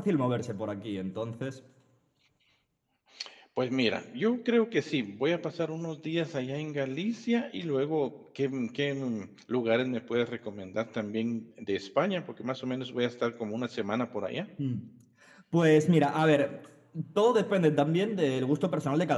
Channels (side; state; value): both; identical; correlation 1.00